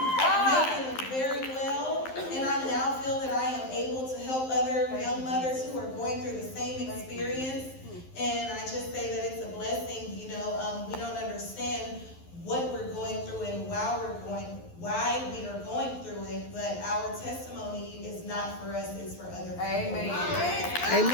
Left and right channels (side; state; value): right; late; 11 ms